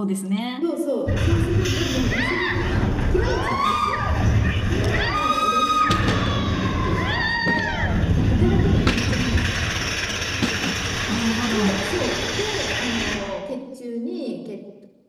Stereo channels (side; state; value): both; identical; correlation 1.00